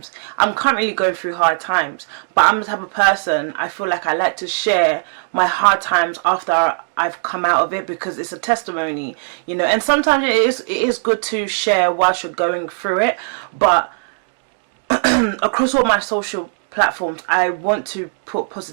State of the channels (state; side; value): silent; left; digital silence